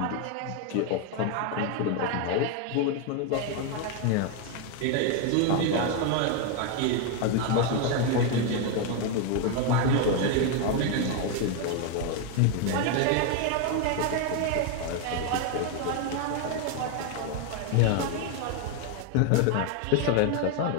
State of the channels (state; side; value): different; both; correlation 0.01